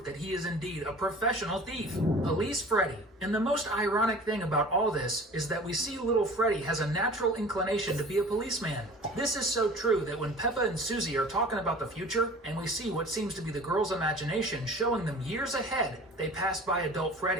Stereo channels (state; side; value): normal; both; correlation 0.43